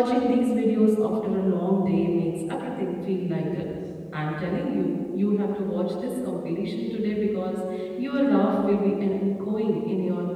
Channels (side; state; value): both; identical; correlation 1.00